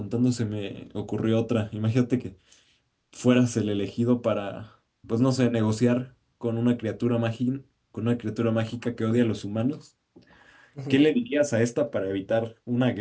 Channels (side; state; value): both; identical; correlation 1.00